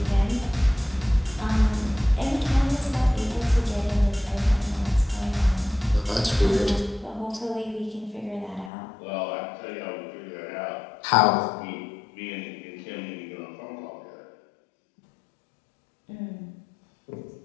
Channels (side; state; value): right; drops out; at 8.7 s